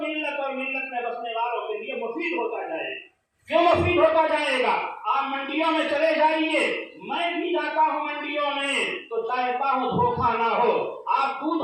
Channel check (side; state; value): both; identical; correlation 1.00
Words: और मिल्लत में बसने वालों के लिए मुफीद होता जाएगा। क्यों मुफीद होता जाएगा? आप मंडियों में चले जाइए, मैं भी जाता हूँ मंडियों में, तो चाहता हूँ धोखा ना हो। आप